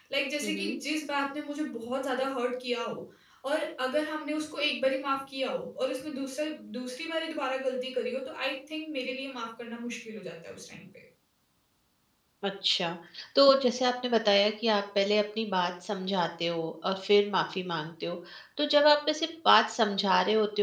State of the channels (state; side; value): identical; both; correlation 1.00